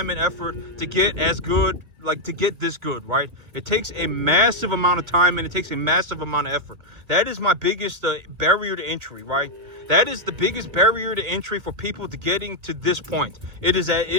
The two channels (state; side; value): late; left; 2.5 ms